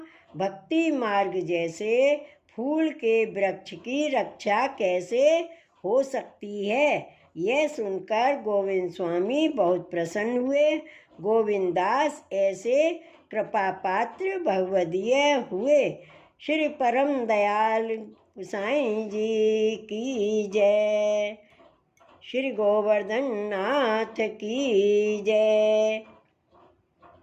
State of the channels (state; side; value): identical; both; correlation 1.00